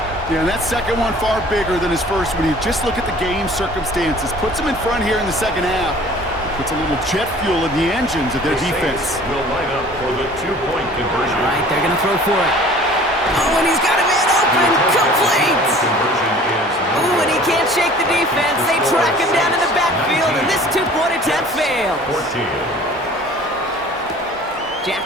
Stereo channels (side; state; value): both; normal; correlation 0.48